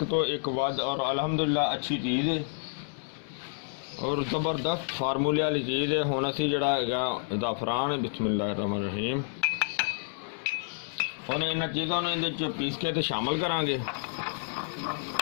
ਤੋਂ ਇੱਕ ਵੱਧ ਔਰ ਅਲਹਮਦੁਲਿਲਾ ਅੱਛੀ ਚੀਜ਼ ਹੈ ਔਰ ਜ਼ਬਰਦਸਤ ਫਾਰਮੂਲੇ ਵਾਲੀ ਚੀਜ਼ ਹੈ। ਹੁਣ ਅਸੀਂ ਜਿਹੜਾ ਹੈਗਾ ਜ਼ਾਫਰਾਨ ਬਿਸਮਿल्लाहिर्रहमानिर्रहीम ਹੁਣ ਇਹਨਾਂ ਚੀਜ਼ਾਂ ਨੂੰ ਇਹਦੇ 'ਚ ਪੀਸ ਕੇ ਤੇ ਸ਼ਾਮਲ ਕਰਾਂਗੇ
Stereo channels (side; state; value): right; silent; 58 dB below the other